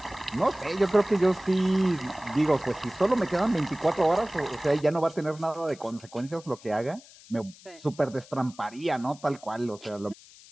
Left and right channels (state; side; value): noise; left; hiss, 22 dB below the sound